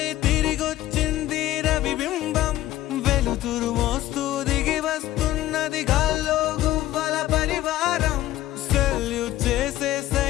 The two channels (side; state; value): right; quieter; 14.7 dB